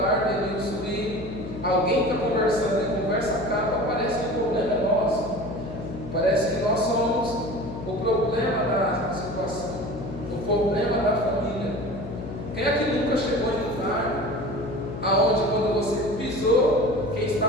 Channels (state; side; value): noise; left; hum, 9 dB below the sound